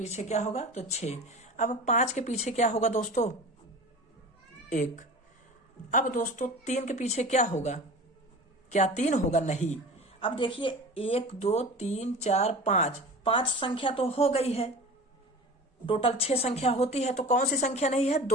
क्या होगा? तो 6। अब 5 के पीछे क्या होगा दोस्तों? 1। अब दोस्तों 3 के पीछे क्या होगा? क्या 3 होगा? नहीं। अब देखिए 1 2 3 4 5, 5 संख्या तो हो गई है, टोटल 6 संख्या होती है, तो कौन सी संख्या नहीं है?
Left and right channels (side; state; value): both; normal; correlation 0.36